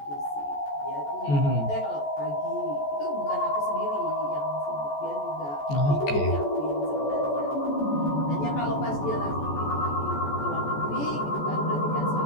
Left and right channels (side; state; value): right; late; 14 ms